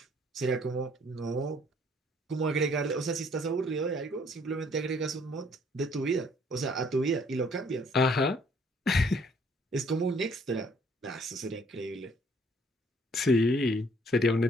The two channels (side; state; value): both; normal; correlation 0.62